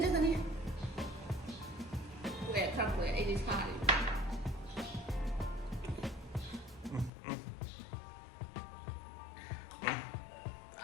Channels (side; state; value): right; drops out; at 7.1 s